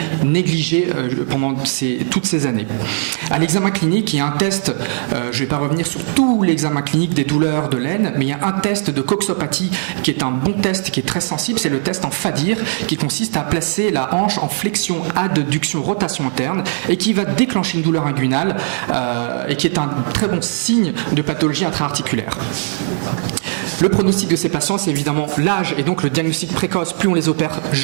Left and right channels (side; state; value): left; silent; digital silence